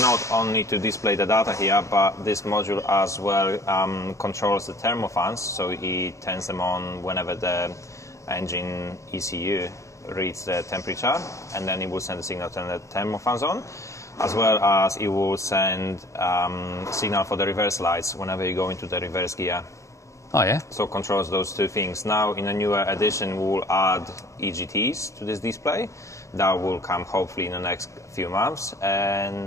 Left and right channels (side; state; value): right; late; 0.15 ms